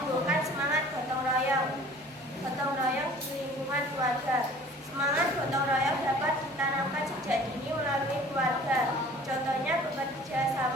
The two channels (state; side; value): normal; both; correlation 0.48